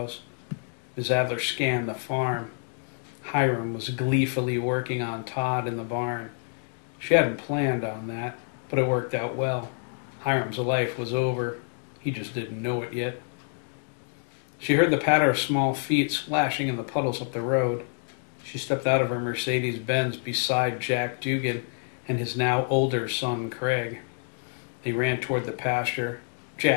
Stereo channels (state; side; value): silent; right; 57 dB below the other